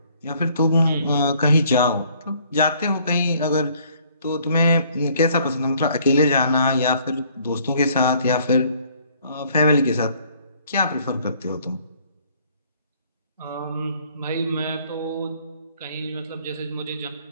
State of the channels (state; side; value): inverted; both; correlation -0.61